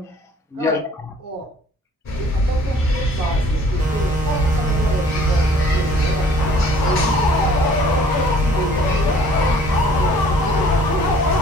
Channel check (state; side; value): normal; both; correlation 0.55